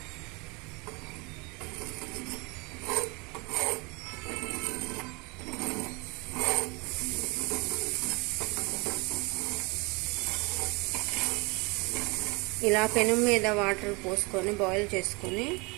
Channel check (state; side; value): quieter; left; 27.7 dB